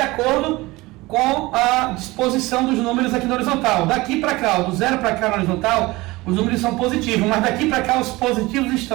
acordo com a disposição dos números aqui na horizontal. Daqui para cá, do 0 para cá na horizontal, os números são positivos, mas daqui para cá os positivos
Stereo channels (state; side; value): quieter; left; 21.0 dB